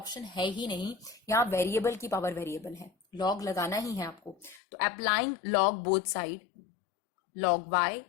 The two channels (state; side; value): drops out; right; at 4.6 s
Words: है ही नहीं, यहां वेरिएबल की पावर वेरिएबल है, लॉग लगाना ही है आपको। तो applying log both side, log y